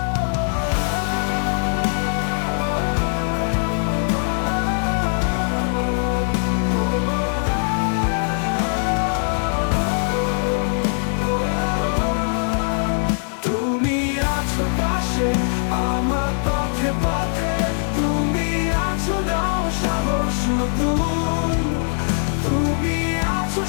তুমি আছো পাশে আমার পথে পথে, তুমি আছো, দাও সাহস নতুন। তুমি আছো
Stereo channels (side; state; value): right; silent; 61 dB below the other